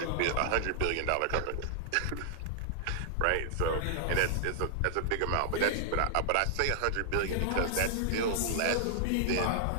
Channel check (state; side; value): different; both; correlation 0.00